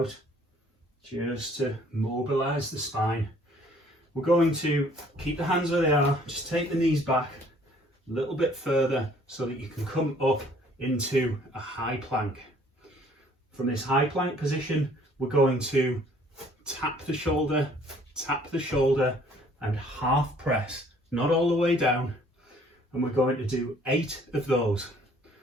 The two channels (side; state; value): both; normal; correlation 0.58